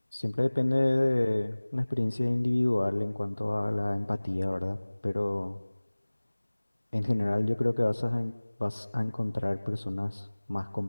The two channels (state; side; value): inverted; both; correlation -1.00